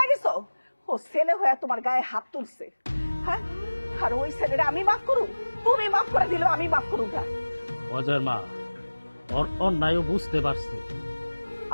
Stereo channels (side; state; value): both; inverted; correlation -1.00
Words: গেছো? ও ছেলে হয়ে তোমার গায়ে হাত তুলছে। হ্যাঁ, আর ওই ছেলেটা আমি মাফ করু? তুমি মাফ করে দিলেও আমি মাফ করু না। অজয়ের মা ওর অন্যায়ও বুঝতে পারছে।